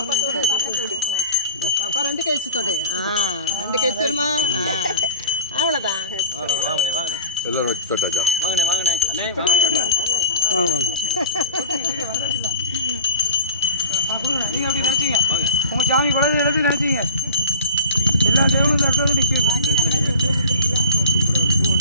பாப்பா 2 கை வச்சு தொடு. 2 கை வச்சிருமா? அவ்வளவுதான். வாங்கனே எல்லாரும் வச்சு தொட்டாச்சா? வாங்கனே அண்ணே வாங்க நீங்க அப்படி நினைச்சீங்க உங்க சாமி குழந்தை எடுத்து நினைச்சீங்க எல்லா தேவனும் இந்த இடத்துல நிற்கும்.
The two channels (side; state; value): both; inverted; correlation -0.37